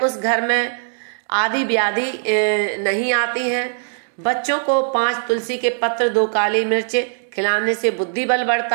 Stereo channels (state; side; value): silent; left; digital silence